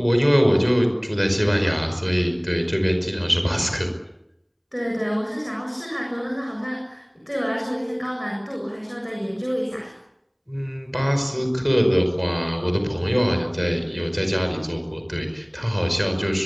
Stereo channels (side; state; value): both; identical; correlation 1.00